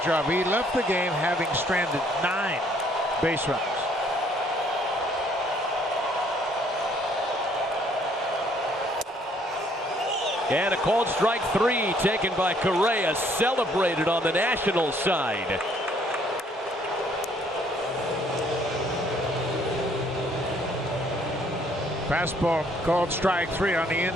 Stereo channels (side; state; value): both; normal; correlation 0.63